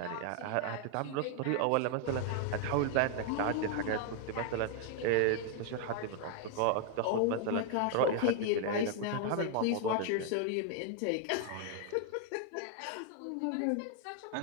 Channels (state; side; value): different; both; correlation 0.00